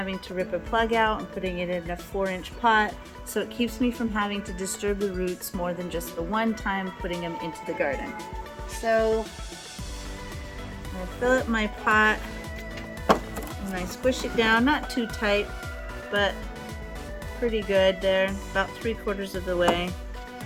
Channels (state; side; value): identical; both; correlation 1.00